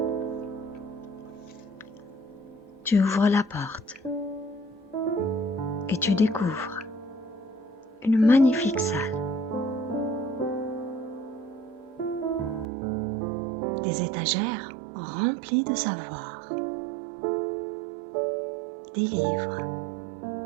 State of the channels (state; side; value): drops out; left; at 12.7 s